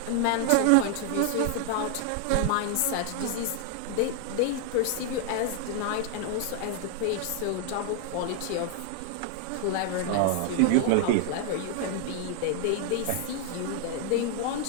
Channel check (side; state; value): both; different; correlation 0.00